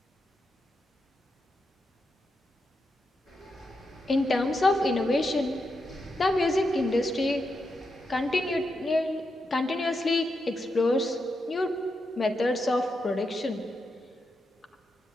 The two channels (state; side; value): normal; both; correlation 0.85